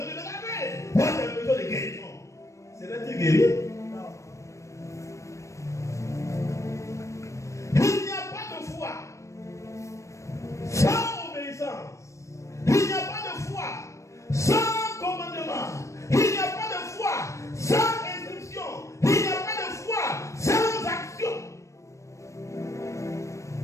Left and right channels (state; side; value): late; right; 0.15 ms